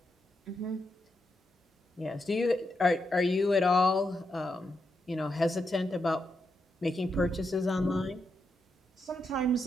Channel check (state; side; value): normal; both; correlation 0.84